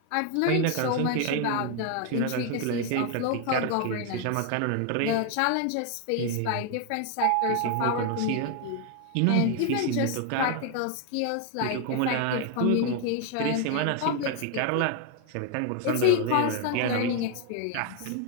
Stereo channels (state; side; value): different; both; correlation 0.01